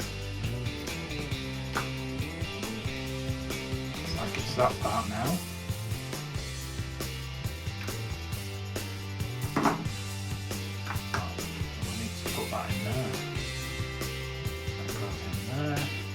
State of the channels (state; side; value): identical; both; correlation 1.00